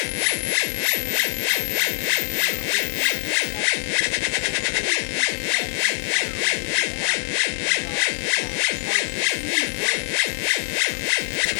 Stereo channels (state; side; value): silent; right; 63 dB below the other